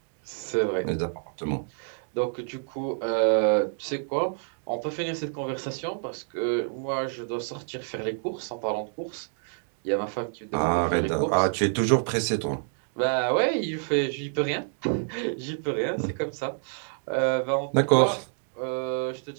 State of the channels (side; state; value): left; silent; digital silence